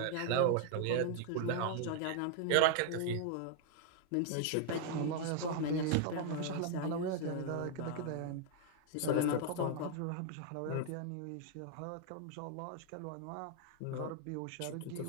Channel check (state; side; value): different; both; correlation 0.00